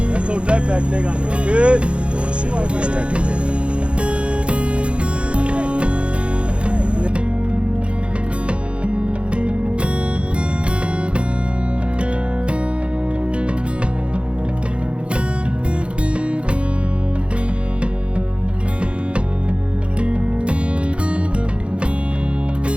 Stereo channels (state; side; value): late; left; 0.058 ms